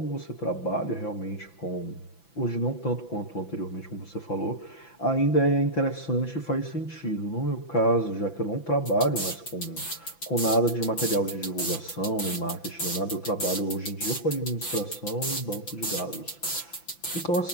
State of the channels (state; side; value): late; right; 5.9 ms